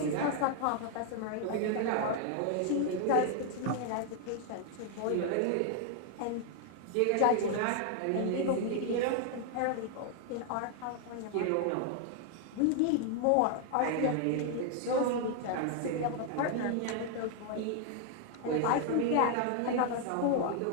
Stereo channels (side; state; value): both; different; correlation 0.00